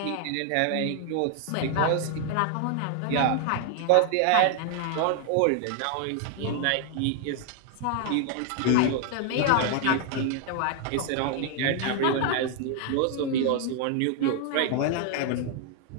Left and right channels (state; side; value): different; both; correlation 0.00